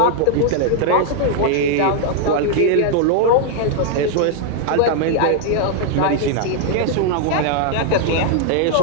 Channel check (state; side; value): different; both; correlation 0.00